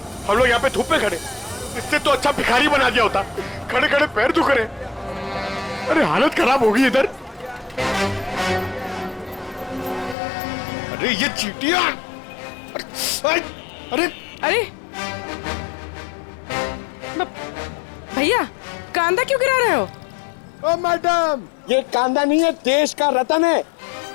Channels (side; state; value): right; drops out; at 10.2 s